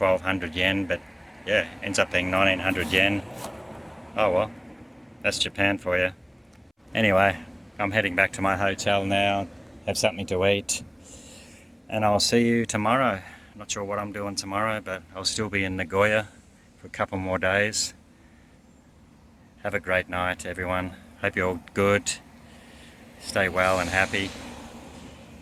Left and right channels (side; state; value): both; identical; correlation 1.00